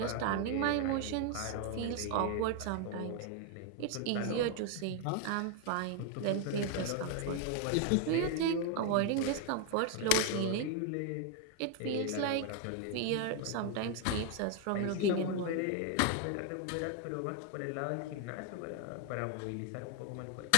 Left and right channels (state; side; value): different; both; correlation 0.01